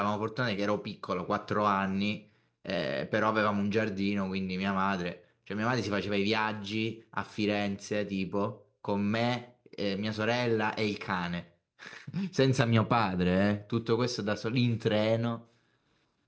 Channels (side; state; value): both; identical; correlation 1.00